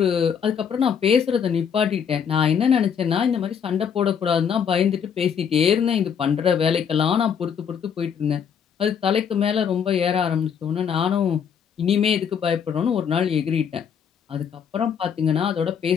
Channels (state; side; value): quieter; right; 7.5 dB